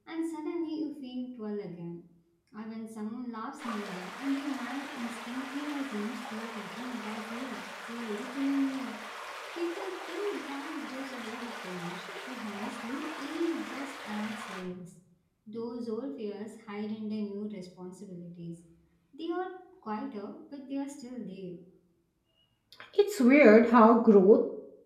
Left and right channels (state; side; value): identical; both; correlation 1.00